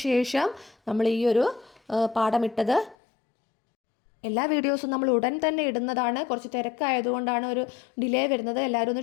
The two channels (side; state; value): right; drops out; at 3.0 s